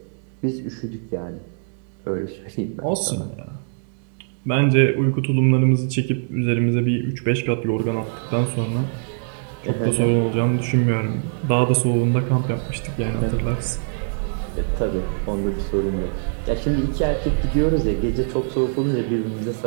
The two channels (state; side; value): silent; left; 62 dB below the other